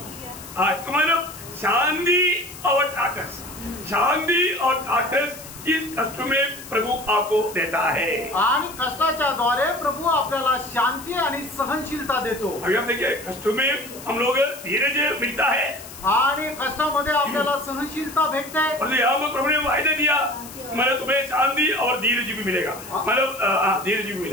लिया। मतलब शांति और ढाढ़स, शांति और ढाढ़स इस कष्ट में प्रभु आपको देता है। आणि कष्टाच्या द्वारे प्रभु आपल्याला शांती आणि सहनशीलता देतो। अभी हम देखिए, कष्ट में हम लोग धीरज मिलता है आणि कष्टामध्ये आपल्याला सहनशीलता भेटते। और यहाँ पर प्रभु ने वायदा दिया, मतलब तुम्हें शांति और धीरज भी मिलेगा, मतलब धीरज भी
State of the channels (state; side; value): noise; left; hiss, 15 dB below the sound